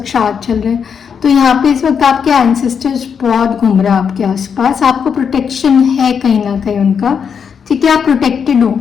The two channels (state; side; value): quieter; right; 6.9 dB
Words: श्राद्ध चल रहे हैं, तो यहाँ पे इस वक्त आपके एंसेस्टर्स बहुत घूम रहे हैं आपके आसपास। आपको प्रोटेक्शन है कहीं ना कहीं उनका, ठीक है। आप प्रोटेक्टेड हो,